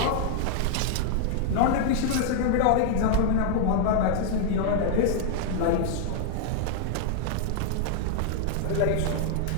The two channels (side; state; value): both; different; correlation 0.00